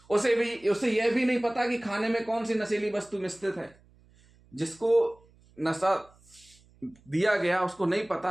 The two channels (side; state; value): right; noise; hum, 29 dB below the sound